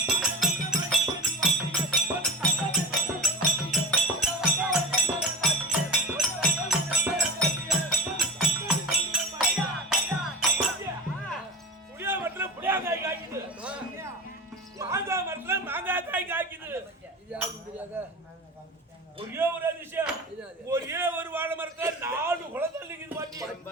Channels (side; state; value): both; normal; correlation 0.30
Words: ஒரே ஒரு அதிசயம், ஒரே ஒரு வாழை மரத்துல 4 குளத்தள்ளி இருக்குது பாட்டி.